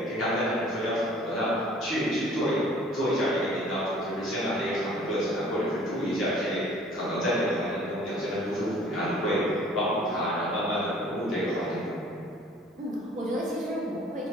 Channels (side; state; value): both; normal; correlation 0.52